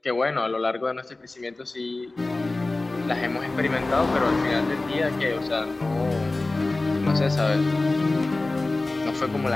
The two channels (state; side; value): quieter; right; 3.1 dB